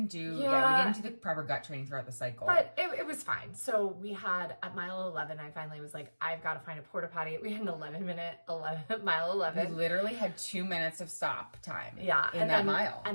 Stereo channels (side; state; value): both; inverted; correlation -1.00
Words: do we didn't do the proper gut training throughout the cycle. But it was fine. So we had at mile 11, I finally was like, I've got to find a porta potty. We had an 11-minute mile 11. We literally had 2 minutes of stop time. Yeah. In that mile.